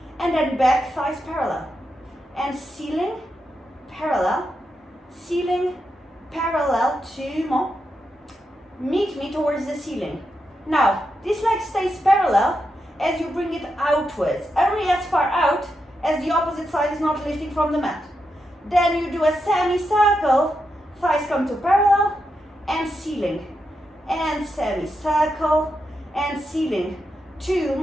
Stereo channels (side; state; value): both; normal; correlation 0.85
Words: and then back thighs parallel. And ceiling, parallel, 2 more. Meet me towards the ceiling. Now, this leg stays parallel as you bring it outwards, only as far out as the opposite side is not lifting from the mat. Then you do a semicircle, thighs come to parallel, and ceiling. And semicircle, and ceiling. 2